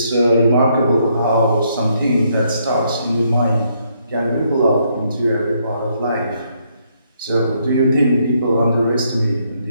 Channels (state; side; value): inverted; both; correlation -0.73